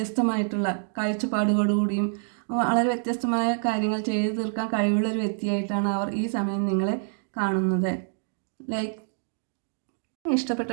കാഴ്ചപ്പാടുകളോടുകൂടിയും വളരെ വ്യത്യസ്തമായ കാര്യങ്ങൾ ചെയ്തു തീർക്കാൻ കഴിവുള്ളൊരു വ്യക്തിയായിട്ടാണ് അവർ ഈ സമയം നിങ്ങളെ കാണുന്നത്.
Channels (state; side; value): silent; left; digital silence